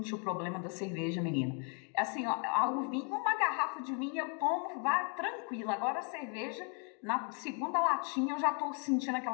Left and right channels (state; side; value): quieter; right; 38.8 dB